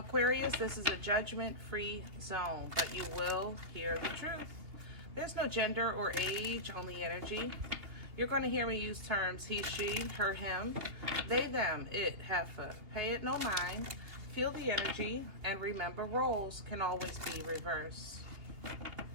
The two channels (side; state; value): left; late; 2.8 ms